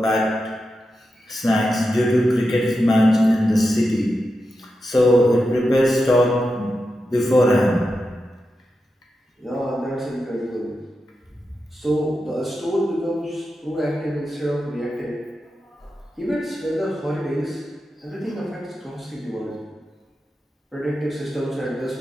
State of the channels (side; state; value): both; normal; correlation 0.89